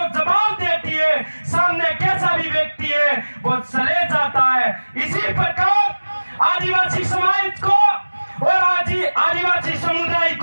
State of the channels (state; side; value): inverted; both; correlation -1.00